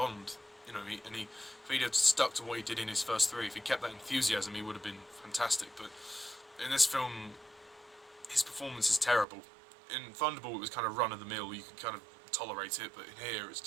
you know, if he'd have stuck to what he did in his first three, if he kept that enthusiasm, he would have been fantastic. But in this film, his performance is terrible. In Thunderball, it was kind of run-of-the-mill, you could kind of tolerate it, but in here, it's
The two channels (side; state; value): left; drops out; at 9.2 s